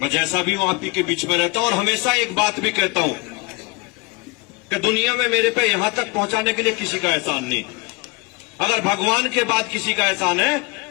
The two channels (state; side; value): quieter; right; 26.0 dB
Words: मैं जैसा भी हूं आप ही के बीच में रहता हूं, और हमेशा एक बात भी कहता हूं कि दुनिया में मेरे पे यहां तक पहुंचाने के लिए किसी का एहसान नहीं। अगर भगवान के बाद किसी का एहसान है